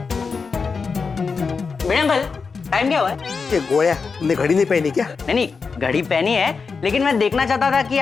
Meera uncle, time क्या हुआ है? ये गोया, तुमने घड़ी नहीं पहनी क्या? नहीं, घड़ी पहनी है, लेकिन मैं देखना चाहता था कि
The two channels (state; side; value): quieter; right; 5.0 dB